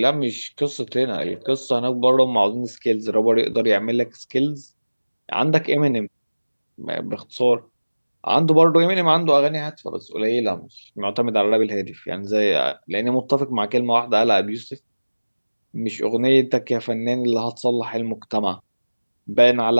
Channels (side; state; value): both; inverted; correlation -1.00